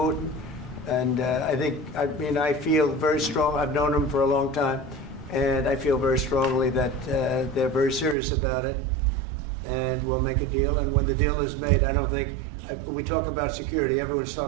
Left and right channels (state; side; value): drops out; left; at 8.2 s